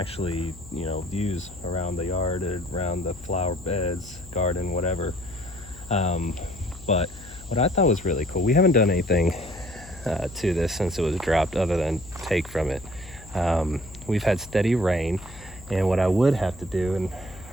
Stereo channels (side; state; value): left; noise; hum, 18 dB below the sound